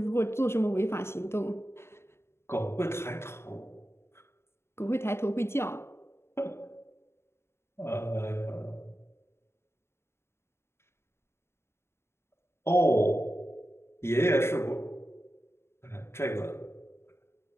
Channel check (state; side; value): late; right; 0.12 ms